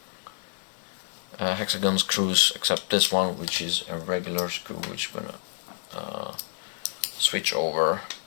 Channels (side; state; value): right; silent; digital silence